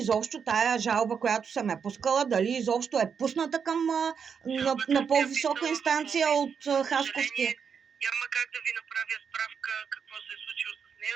тая жалба, която съм я пускала, дали изобщо е пусната към на по-висока инстанция от Хасковския. Няма как да ви направя справка какво се е случило с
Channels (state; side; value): quieter; left; 6.7 dB